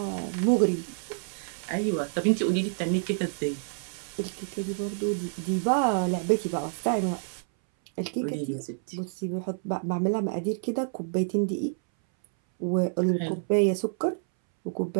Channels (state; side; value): silent; left; 59 dB below the other